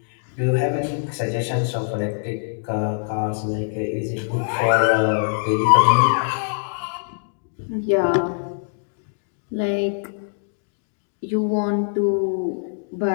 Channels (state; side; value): silent; right; digital silence